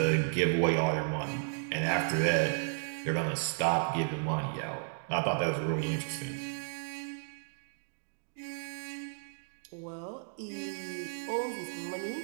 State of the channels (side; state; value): left; silent; digital silence